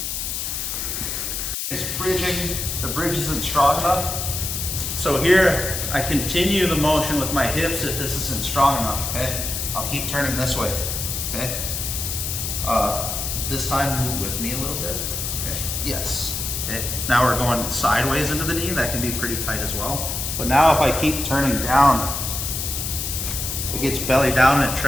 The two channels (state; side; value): noise; left; hiss, 3 dB below the sound